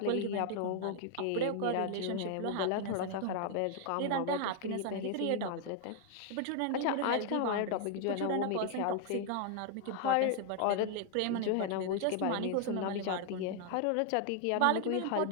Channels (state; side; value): different; both; correlation 0.00